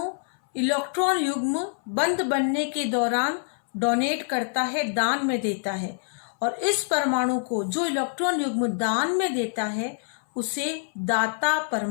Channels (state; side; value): silent; right; 61 dB below the other